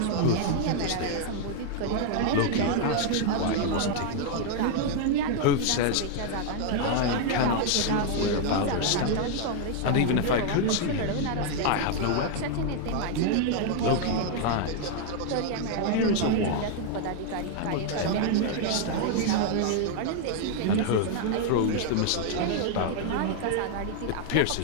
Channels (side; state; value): both; different; correlation 0.00